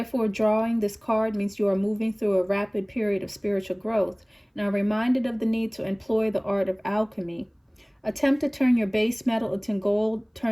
drawing this card means you are moving through a rapid period of spiritual growth and are reminded of the need to employ the art of alchemy. Attempt to turn your base metal into gold,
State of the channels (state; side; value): identical; both; correlation 1.00